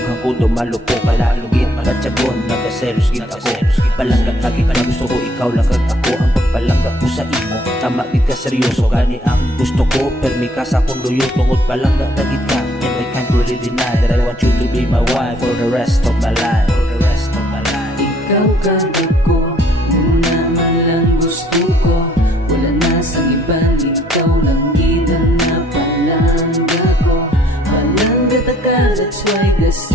ko dumalo ko, kalalugit malatsagon, nagaselos gid ako. Palanggat lagi ka na gusto ko, ikaw lang kag ako. Ang pagpalangga ko sa imo, tama gid ka seryoso, gani ang gusto ko. Permi ka sa akong luyo, tungod palangga tagid ka. And I can't really deny that I want you to be my wife for the rest of my life. For the rest of my life. Ikaw kag ako, muna man lang gusto ko. Wala na sa iba, ikaw lang gid ang napalangga ko. Palangga ta ka, that's why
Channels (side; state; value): both; normal; correlation 0.63